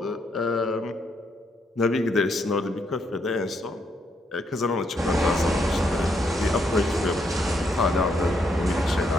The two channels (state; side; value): normal; both; correlation 0.75